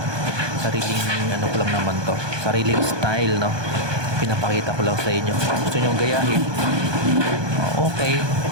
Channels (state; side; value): late; left; 1.2 ms